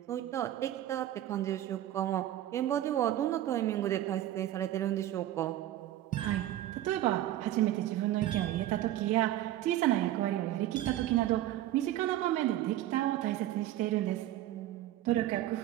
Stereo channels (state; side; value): quieter; left; 13.5 dB